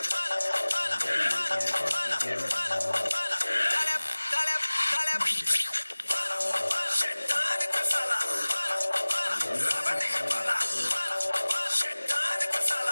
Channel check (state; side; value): inverted; both; correlation -1.00